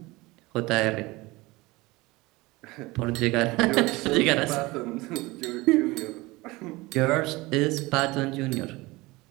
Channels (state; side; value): quieter; left; 21.7 dB